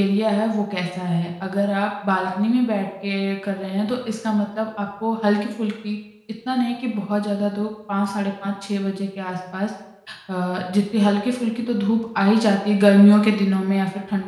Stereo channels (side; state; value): both; identical; correlation 1.00